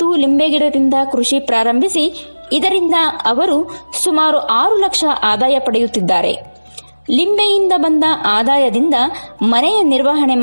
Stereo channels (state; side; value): inverted; both; correlation -1.00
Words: ಲಿಂಬೆ ಗಿಡದಿಂದ ಕೃಷಿ ಪ್ರಾರಂಭಿಸಿ ಇದರಿಂದ ಅವರು ಸುಮಾರು 6 ಲಕ್ಷ ಆದಾಯ ಪಡೆಯುತ್ತಿದ್ದಾರೆ. ಲಿಂಬೆಯಿಂದ ಬಂದ ಆದಾಯದಿಂದ ಮನೆಯ ನಿರ್ವಹಣೆ